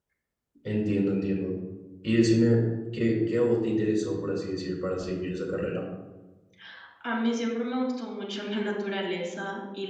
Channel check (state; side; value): identical; both; correlation 1.00